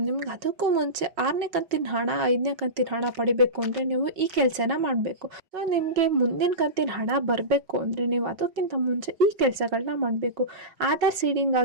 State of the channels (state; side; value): late; left; 5.4 ms